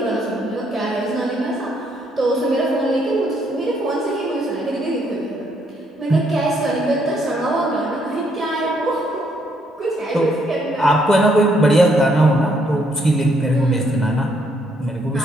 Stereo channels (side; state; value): both; normal; correlation 0.71